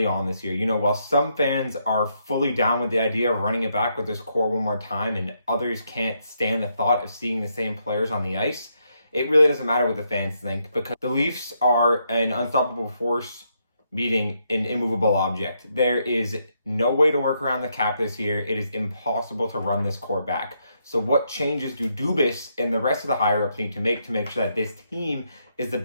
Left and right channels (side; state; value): both; inverted; correlation -0.77